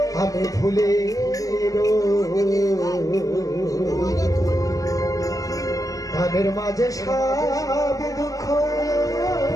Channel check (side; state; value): right; late; 0.17 ms